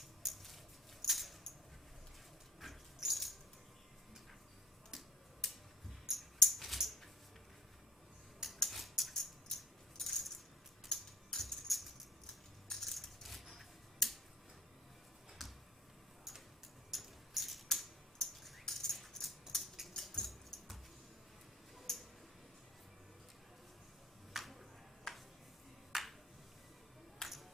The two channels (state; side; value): normal; both; correlation 0.50